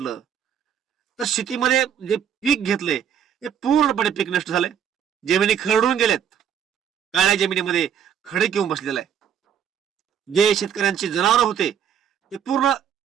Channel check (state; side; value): quieter; left; 8.6 dB